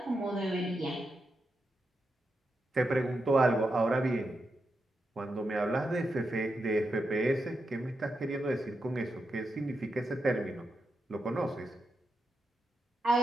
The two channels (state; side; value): normal; both; correlation 0.86